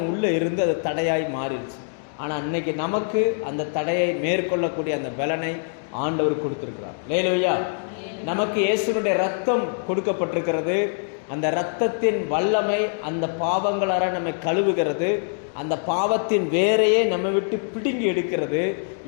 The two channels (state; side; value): silent; right; digital silence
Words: உள்ளே இருந்து அது தடையாய் மாறிடுச்சு. ஆனால் இன்னைக்கு நமக்கு அந்த தடையை மேற்கொள்ளக்கூடிய அந்த பலனை ஆண்டவர் கொடுத்துருக்கிறார். லேலூயா. நமக்கு இயேசுனுடைய ரத்தம் கொடுக்கப்பட்டிருக்கிறது. அந்த இரத்தத்தின் வல்லமை அந்த பாவங்களார நம்மை கழுவுகிறது. அந்த பாவத்தின் வேரையே நம்ம விட்டு பிடுங்கி எடுக்கிறது.